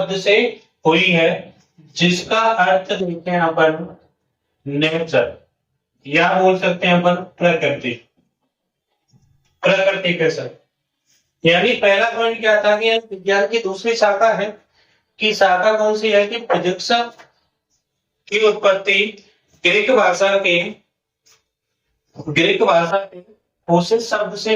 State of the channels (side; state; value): both; identical; correlation 1.00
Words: से हुई है, जिसका अर्थ देखते हैं अपन नेचर, या बोल सकते हैं अपन प्रकृति। प्रकृति के साथ, यानी पहला पॉइंट क्या था कि विज्ञान की दूसरी शाखा है, कि शाखा कौन सी है? कि फिजिक्स की उत्पत्ति ग्रीक भाषा के उसी शब्द से